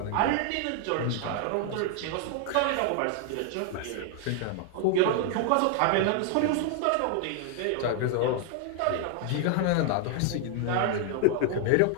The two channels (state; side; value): different; both; correlation 0.00